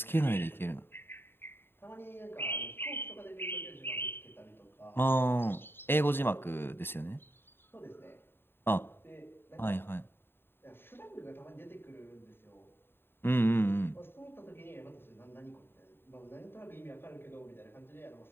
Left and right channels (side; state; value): right; late; 0.11 ms